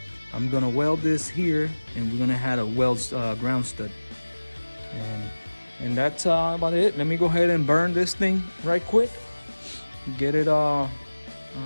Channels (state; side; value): inverted; both; correlation -1.00